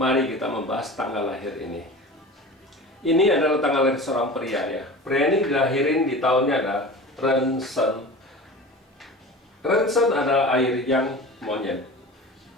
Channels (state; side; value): normal; both; correlation 0.35